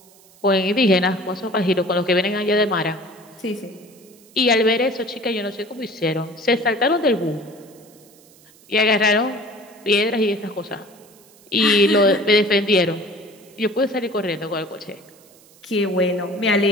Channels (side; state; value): right; noise; hiss, 27 dB below the sound